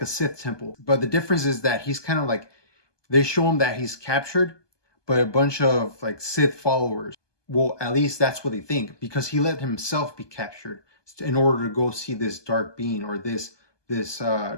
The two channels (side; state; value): right; late; 1.2 ms